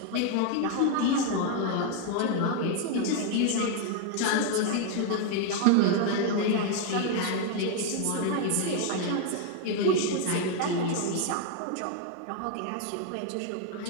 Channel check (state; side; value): different; both; correlation 0.01